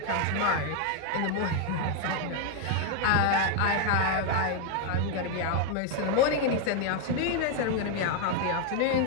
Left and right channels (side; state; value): both; different; correlation 0.00